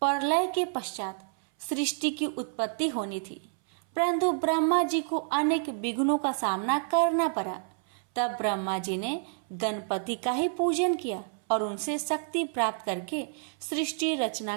प्रलय के पश्चात सृष्टि की उत्पत्ति होनी थी, परंतु ब्रह्मा जी को अनेक विघ्नों का सामना करना पड़ा। तब ब्रह्मा जी ने गणपति का ही पूजन किया और उनसे शक्ति प्राप्त करके सृष्टि रचना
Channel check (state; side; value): silent; left; 59 dB below the other